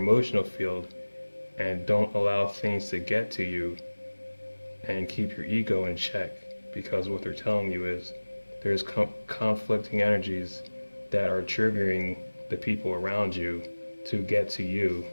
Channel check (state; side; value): inverted; both; correlation -1.00